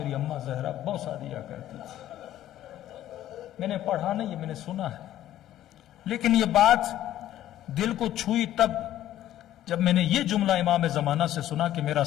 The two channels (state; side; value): quieter; right; 12.8 dB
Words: اماں زہرا بوسہ دیا کرتی تھی. میں نے پڑھا نہیں، یہ میں نے سنا ہے، لیکن یہ بات دل کو چھوئی تب جب میں نے یہ جملہ امام زمانہ سے سنا کہ میرا